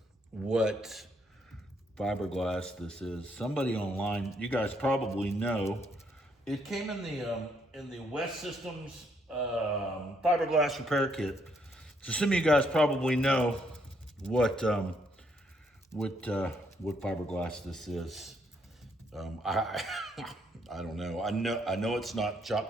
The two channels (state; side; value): normal; both; correlation 0.72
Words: what fiberglass this is. Somebody online, you guys probably know. It came in the West Systems fiberglass repair kit. So some of you guys probably know what fiberglass this is. I don't know. I know it's not